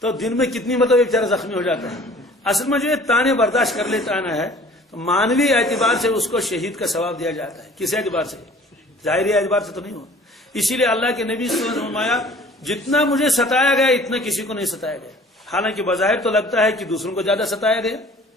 تو دن میں کتنی مطلب ایک طرح زخمی ہو جاتا ہے۔ اصل میں جو یہ تانے برداشت کر لیتا ہے نا ہے، تو مانوی اعتبار سے اس کو شہید کا ثواب دیا جاتا ہے۔ کس اعتبار سے؟ ظاہری اعتبار سے تو نہیں ہو۔ اسی لیے اللہ کے نبی صلی اللہ علیہ وسلم نے فرمایا جتنا مجھے ستایا گیا اتنا کسی کو نہیں ستایا گیا۔ حالانکہ بظاہر تو لگتا ہے کہ دوسروں کو زیادہ ستایا گیا۔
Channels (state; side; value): normal; both; correlation 0.50